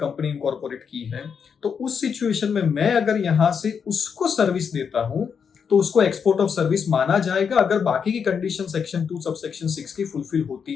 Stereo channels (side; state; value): right; quieter; 6.7 dB